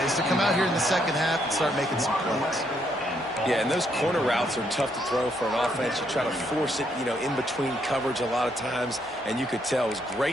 to come out here in the second half and start making some plays. Yeah, and those corner routes are tough to throw for an offense. You try to force it, in between coverage a lot of times, and you could tell it was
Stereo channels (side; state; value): both; normal; correlation 0.73